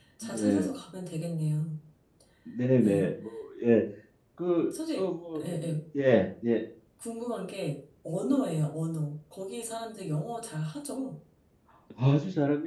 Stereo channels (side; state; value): both; identical; correlation 1.00